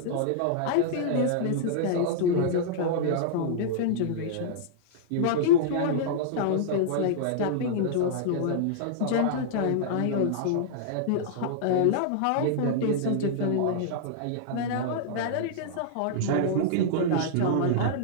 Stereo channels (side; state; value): both; different; correlation -0.02